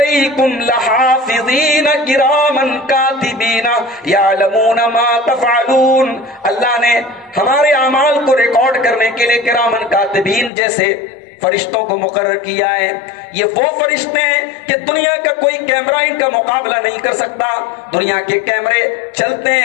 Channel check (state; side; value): drops out; right; at 10.5 s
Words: لَحَافِظِينَ كِرَامًا كَاتِبِينَ يَعْلَمُونَ مَا تَفْعَلُونَ، اللہ نے ہمارے اعمال کو ریکارڈ کرنے کے لیے کرامن کاتبین جیسے فرشتوں کو مقرر کیا ہے۔ یہ وہ فرشتے ہیں کہ دنیا کا کوئی کیمرہ ان کا مقابلہ نہیں کر سکتا۔ دنیا کے کیمرے چلتے